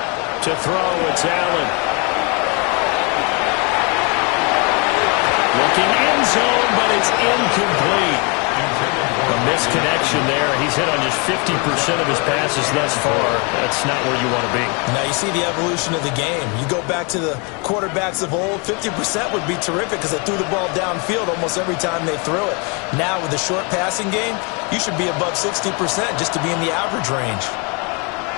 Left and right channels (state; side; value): quieter; right; 32.7 dB